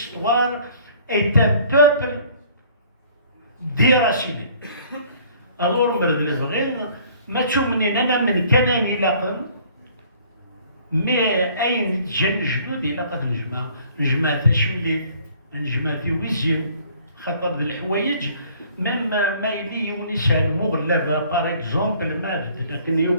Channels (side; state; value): both; inverted; correlation -0.56